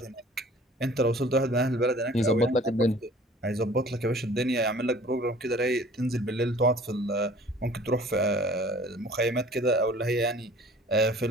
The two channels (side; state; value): both; normal; correlation 0.49